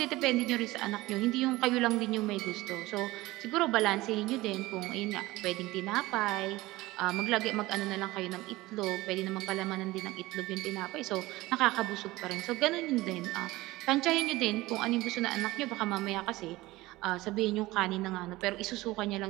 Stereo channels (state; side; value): quieter; left; 19.1 dB